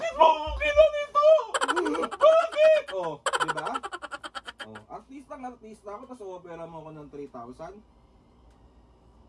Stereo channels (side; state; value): both; identical; correlation 1.00